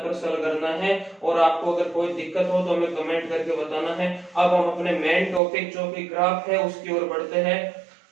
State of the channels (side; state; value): left; drops out; at 5.4 s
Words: सॉल्व करना है, और आपको अगर कोई दिक्कत हो तो हमें कमेंट करके बताना है। अब हम अपने मेन टॉपिक जो कि ग्राफ है उसकी ओर बढ़ते हैं।